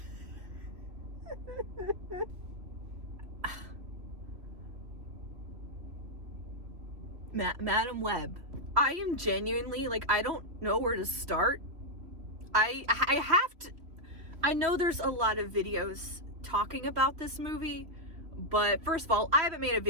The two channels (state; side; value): late; left; 3.0 ms